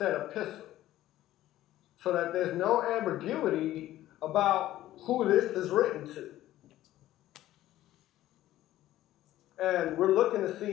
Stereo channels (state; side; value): quieter; right; 14.3 dB